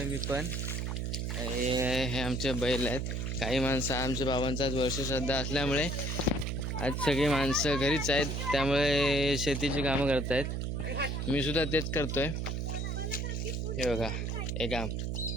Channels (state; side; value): noise; right; hum, 2 dB below the sound